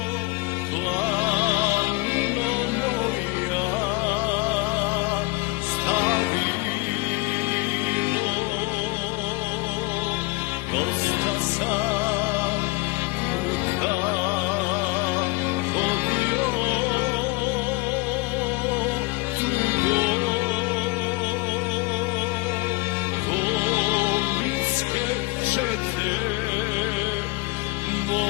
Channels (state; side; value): quieter; right; 24.7 dB